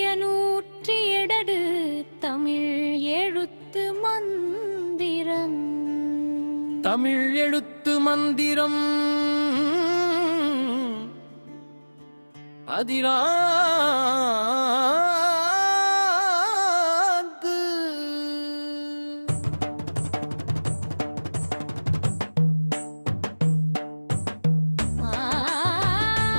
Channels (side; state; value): both; inverted; correlation -1.00